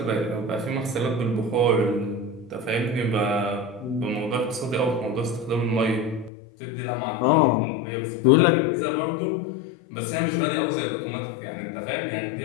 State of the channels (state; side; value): drops out; right; at 6.3 s